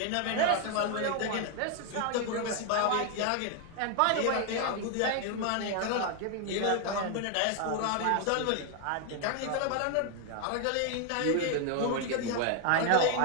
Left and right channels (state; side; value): different; both; correlation 0.01